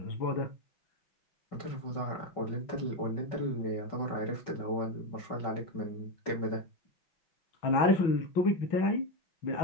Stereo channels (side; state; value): right; late; 6.0 ms